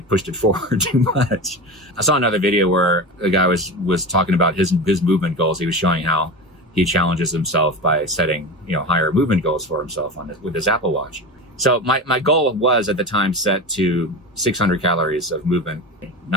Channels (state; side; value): normal; both; correlation 0.27